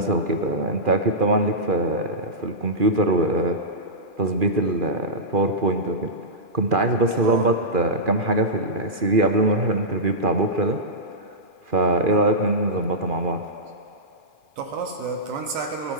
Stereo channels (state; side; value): late; left; 2.4 ms